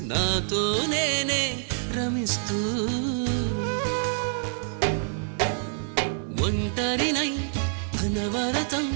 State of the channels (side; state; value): left; silent; 60 dB below the other